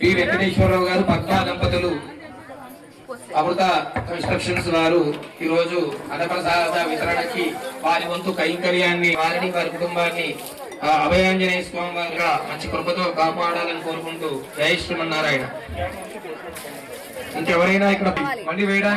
వెంకటేశ్వరరావు గారు పద్మా దంపతులు అమృత కన్స్ట్రక్షన్స్ వారు ఈ రోజు అన్నప్రసాద వితరణకి వారి వంతు కైంకర్యాన్ని వారిని వారి కుటుంబాన్ని అభయాంజనేయ స్వామి వారిగా మంచి కృపతో కాపాడాలని కోరుకుంటూ జై శ్రీమన్నారాయణ. ఇంకెవరైనా ఇక్కడ మళ్ళీ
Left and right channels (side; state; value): both; identical; correlation 1.00